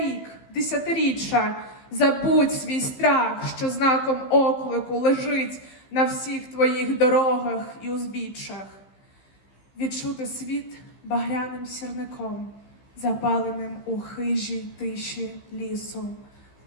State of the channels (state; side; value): late; right; 15 ms